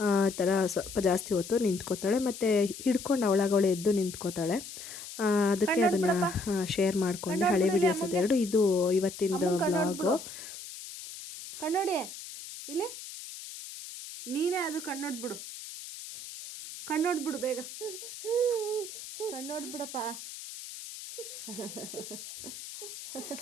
ಈ ಥರ ಸ್ವಲ್ಪ ಜಾಸ್ತಿ ಹೊತ್ತು ನಿಂತ್ಕೋತಾಳೆ. ಮತ್ತು ಹಿಡ್ಕೊಂಡು ಅವಳಾಗವಳೆ ಎದ್ದು ನಿಂತ್ಕೋತಾಳೆ. ಅದಕ್ಕೆ ಅದನ್ನು ಶೇರ್ ಮಾಡಿಕೊಂಡೆ, ಹಳೆ ವೀಡಿಯೋಸ್ ಅದೆರಡು. ಇದು ಇವತ್ತಿಂದು ವ್ಲಾಗು. ಕಣ್ಣೋಡಿ ಇಲ್ಲಿ, ನೀನೇ ಅದು ಕಣ್ಣೋಡ್ಬಿಡು, ಕಣ್ಣೋಡ್ಬಿಡು ಬೇಗ, ಕಣ್ಣೋಡ್ಬಿಡಪ್ಪ.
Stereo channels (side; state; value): left; noise; hiss, 12 dB below the sound